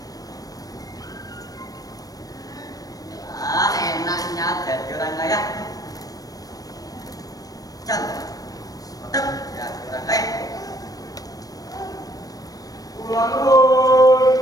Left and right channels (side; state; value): right; late; 0.18 ms